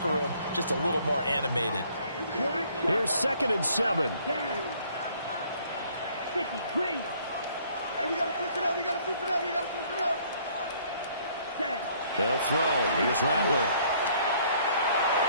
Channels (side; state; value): both; inverted; correlation -0.61